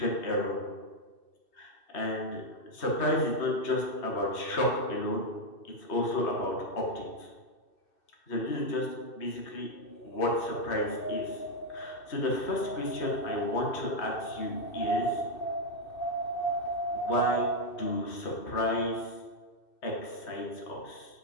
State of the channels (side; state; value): right; late; 2.6 ms